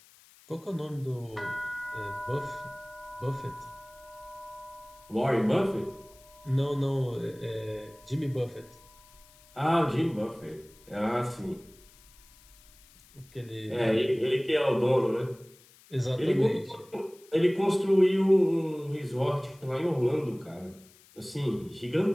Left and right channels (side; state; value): left; noise; hiss, 26 dB below the sound